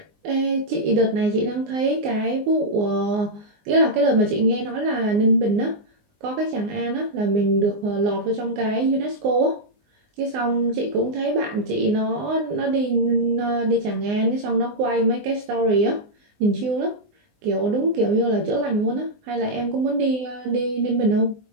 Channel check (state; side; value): late; left; 19 ms